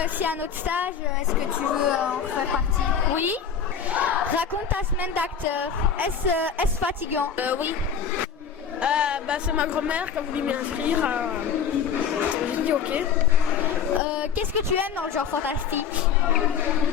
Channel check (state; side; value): quieter; right; 7.2 dB